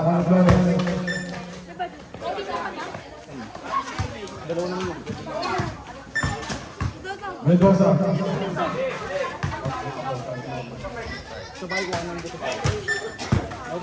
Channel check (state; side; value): identical; both; correlation 1.00